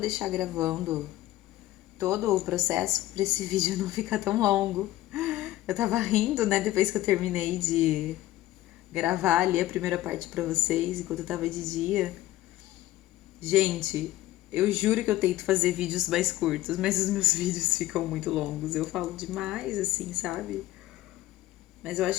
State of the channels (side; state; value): right; quieter; 15.5 dB